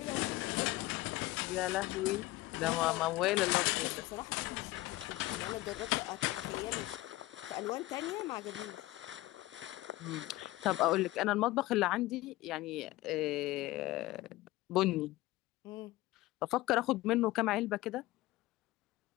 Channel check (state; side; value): quieter; right; 18.3 dB